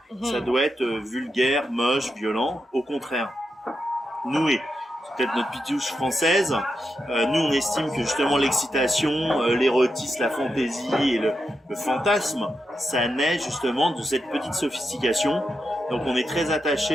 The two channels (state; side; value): normal; both; correlation 0.86